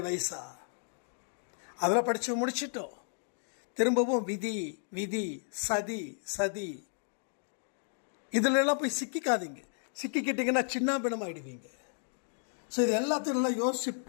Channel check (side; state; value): right; silent; 56 dB below the other